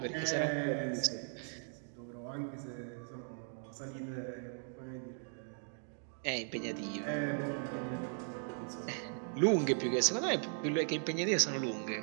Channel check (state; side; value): silent; left; 53 dB below the other